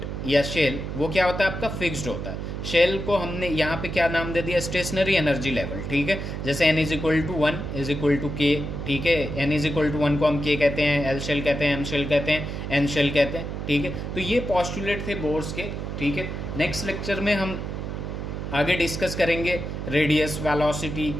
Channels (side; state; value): right; noise; hum, 5 dB below the sound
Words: या शेल वो क्या होता है आपका, फिक्स्ड होता है। शेल को हमने यहाँ पे क्या नाम दे दिया, स्टेशनरी एनर्जी लेवल, ठीक है। जैसे N = 1 = K, ठीक है। N = 1 को हम K कहते हैं, L शेल कहते हैं, M शेल कहते हैं, N शेल कहते हैं, ठीक है। तो ये पॉस्टुलेट थे बोर्स के, ठीक है। नेक्स्ट लेक्चर में हम आगे डिस्कस करेंगे रेडियस, वेलोसिटी,